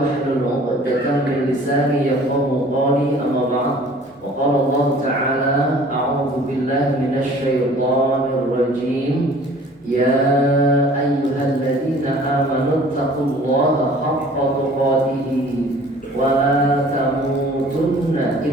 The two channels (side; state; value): both; normal; correlation 0.50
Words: عقدة من لساني يفقهوا قولي أما بعد وقال الله تعالى أعوذ بالله من الشيطان الرجيم يا أيها الذين آمنوا اتقوا الله حق تقاته ولا تموتن